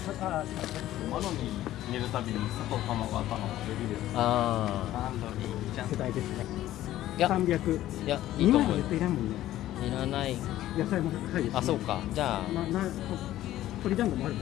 入れるたびに砂糖卵頭ができる。あマロニーちゃん世代ですね。いや300。いや、いいと思う。絶対いらんもんね。いらない。野菜も高いです。あ、そうか。じゃあ。鶏団子もある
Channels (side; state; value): right; quieter; 14.0 dB